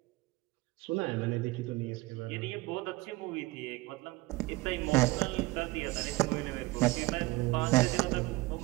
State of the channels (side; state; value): left; quieter; 20.7 dB